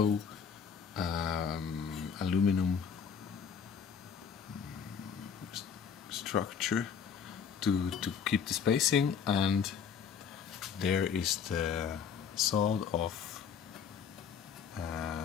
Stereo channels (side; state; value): right; quieter; 6.9 dB